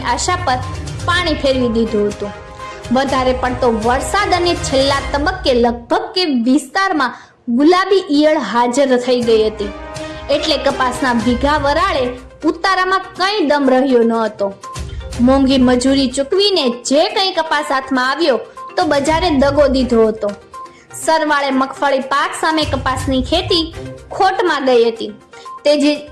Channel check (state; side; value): identical; both; correlation 1.00